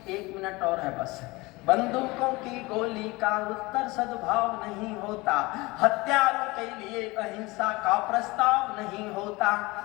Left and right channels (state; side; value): quieter; right; 22.7 dB